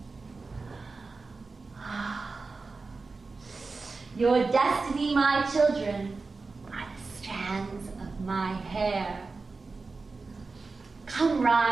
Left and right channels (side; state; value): left; quieter; 4.0 dB